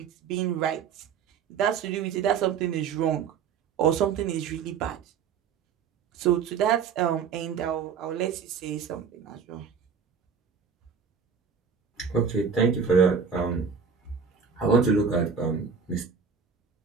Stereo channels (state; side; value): quieter; left; 6.4 dB